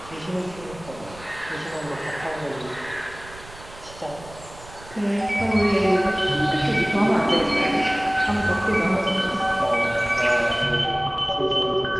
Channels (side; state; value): right; noise; rumble, 18 dB below the sound